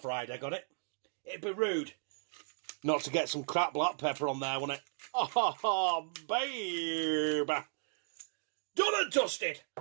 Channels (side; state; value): left; silent; digital silence